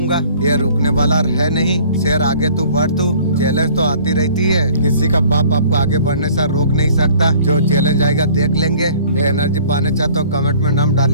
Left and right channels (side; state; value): both; inverted; correlation -0.52